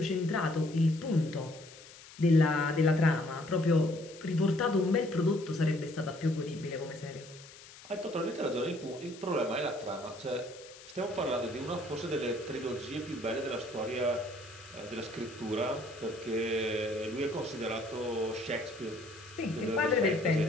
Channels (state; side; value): noise; left; hiss, 19 dB below the sound